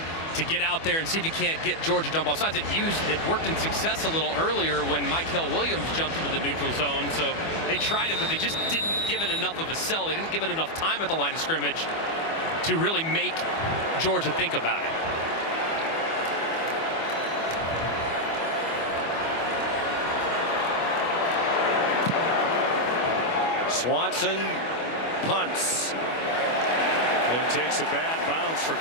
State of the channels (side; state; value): right; late; 25 ms